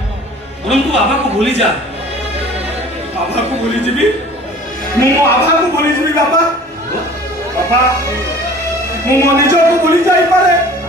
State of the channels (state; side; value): normal; both; correlation 0.46